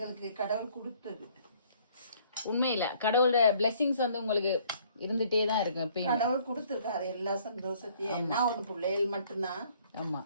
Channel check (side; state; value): both; inverted; correlation -0.61